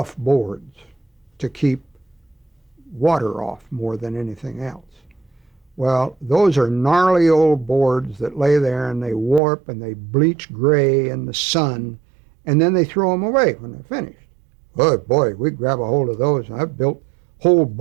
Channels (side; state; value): left; drops out; at 9.4 s